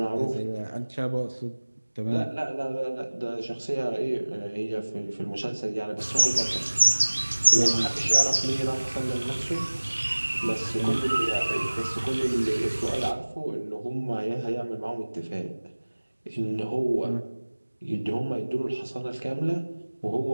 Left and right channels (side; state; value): both; inverted; correlation -1.00